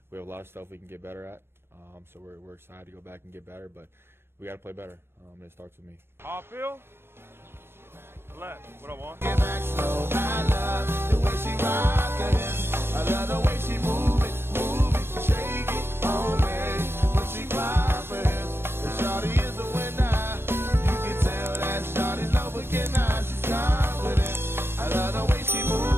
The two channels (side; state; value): left; late; 0.11 ms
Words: we have a lot of stuff we can get better at. So we're excited to go back and get better, but we got to play better, and it starts with me. Howell, left, what I want. Get back slow, I love the way she rockin' it. I love the way she move it, shake it on me. When she clap it, the shawty is the winner. You can tell that shawty's no beginner. She's confident. I love the way she